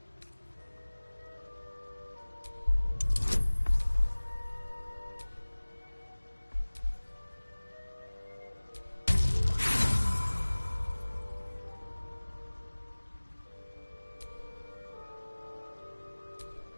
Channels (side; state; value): both; inverted; correlation -1.00